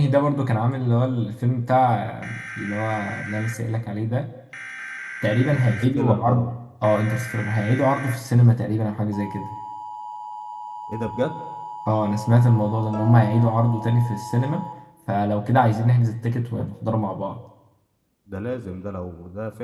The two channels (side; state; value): both; identical; correlation 1.00